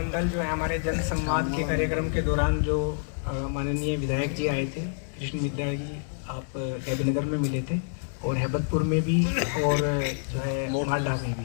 जो है हमारे जन संवाद के कार्यक्रम के दौरान जो माननीय विधायक जी आए थे, कृष्ण विद्या जी, आप देवीनगर में मिले थे और हैबतपुर में भी और जो है माडा में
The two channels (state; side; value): silent; right; digital silence